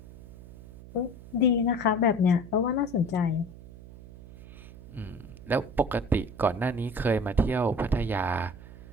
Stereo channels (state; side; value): noise; right; hum, 17 dB below the sound